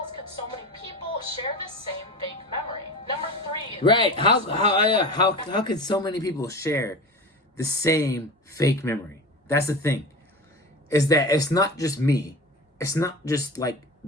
could so many people share this same fake memory? Number 3. Right. How could so many people share the same fake memory? That's the thing. Is that it's not just me. It's not just like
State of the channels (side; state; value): both; normal; correlation 0.30